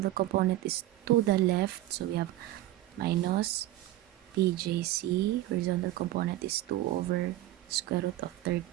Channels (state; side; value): quieter; left; 15.2 dB